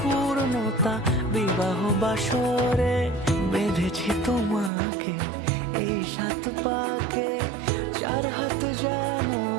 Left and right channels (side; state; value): left; drops out; at 4.7 s